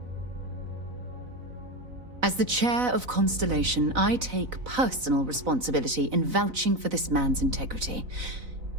As the chair of Constellation, I take personal responsibility in vouching for this man's integrity.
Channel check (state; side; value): late; left; 4.0 ms